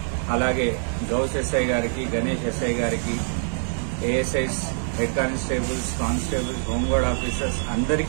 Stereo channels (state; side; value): silent; left; 62 dB below the other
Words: అలాగే గౌస్ ఎస్ఐ గారికి, గణేష్ ఎస్ఐ గారికి, ASIs, head constables, constables, home guard officers